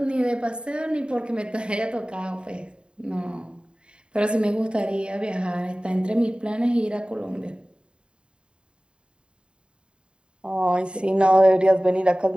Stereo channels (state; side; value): late; left; 0.052 ms